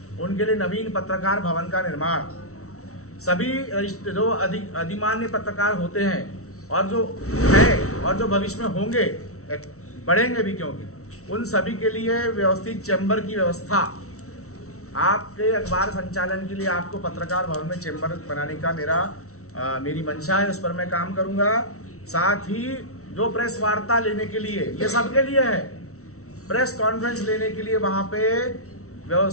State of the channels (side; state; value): right; late; 0.64 ms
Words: उनके लिए नवीन पत्रकार भवन का निर्माण, सभी जो अधिमान्य पत्रकार होते हैं और जो है और जो भविष्य में होंगे, बढ़ेंगे भी क्योंकि, उन सभी के लिए व्यवस्थित चैम्बर की व्यवस्था। आपके अखबार संचालन के लिए आपको पत्रकार भवन में चैम्बर बनाने का मेरी मंशा है, उस पर मैं काम करूंगा। साथ ही जो प्रेस वार्ता लेने के लिए, ये सबके लिए है, प्रेस कॉन्फ्रेंस लेने के लिए वहाँ पे